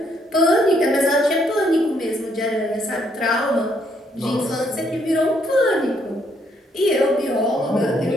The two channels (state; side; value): normal; both; correlation 0.71